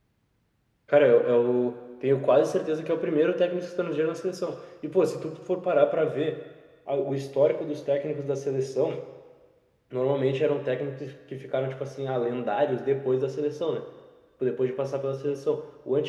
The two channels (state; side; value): identical; both; correlation 1.00